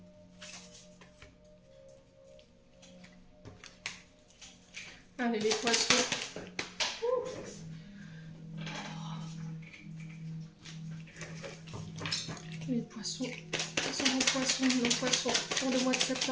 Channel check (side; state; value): both; identical; correlation 1.00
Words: Allez, les poissons. Les poissons. Nos poissons pour le mois de